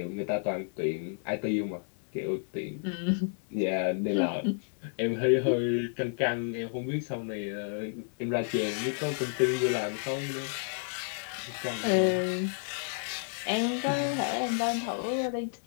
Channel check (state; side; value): silent; right; digital silence